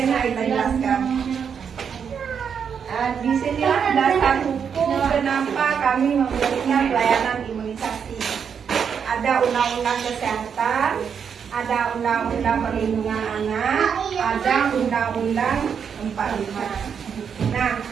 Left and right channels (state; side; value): quieter; left; 7.1 dB